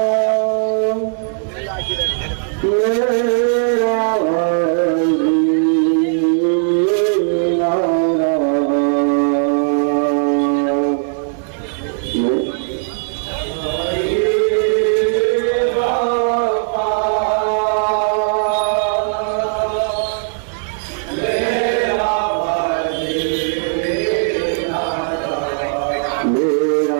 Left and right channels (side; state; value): left; silent; digital silence